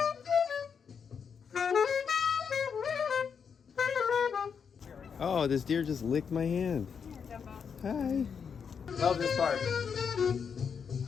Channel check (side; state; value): right; quieter; 6.6 dB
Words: Oh, this deer just licked my hand. Hi. Love this part.